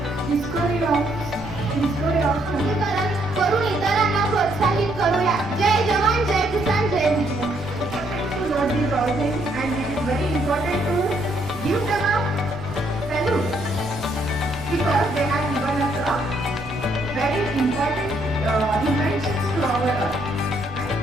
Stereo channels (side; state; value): right; noise; rumble, 16 dB below the sound